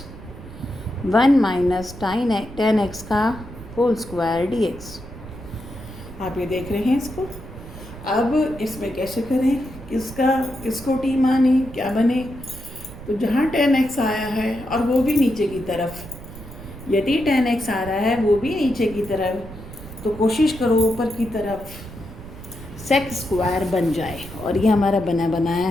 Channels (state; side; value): noise; right; rumble, 15 dB below the sound